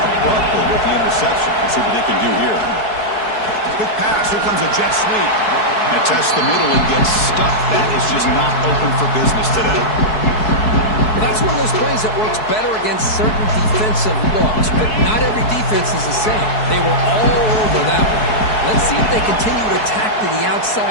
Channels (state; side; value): late; right; 4.7 ms